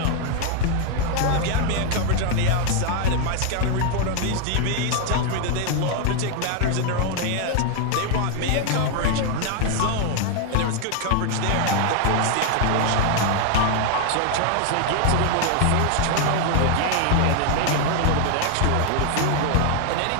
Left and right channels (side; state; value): both; different; correlation 0.01